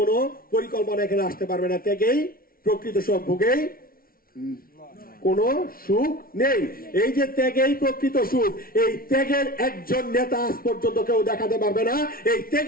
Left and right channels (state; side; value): late; right; 0.43 ms